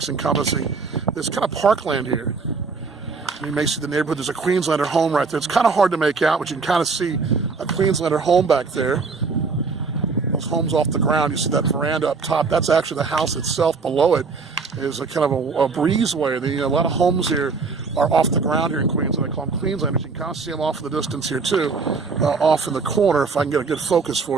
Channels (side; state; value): left; quieter; 4.6 dB